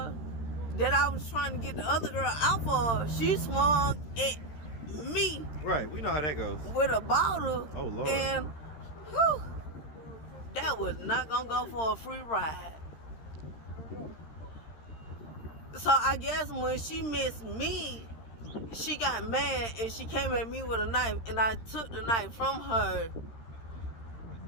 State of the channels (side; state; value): right; late; 13 ms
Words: that I was trying to get the other girl out for, she swung at me. Right, we know how that goes. With a bottle. Oh, Lord. And, whew, that was not gonna go for a free ride. So I guess when she missed me, she got mad and she came at me with a knife, and I took the knife from her